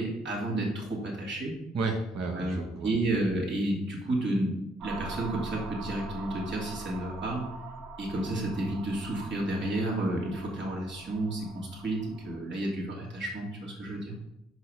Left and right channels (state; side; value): normal; both; correlation 0.70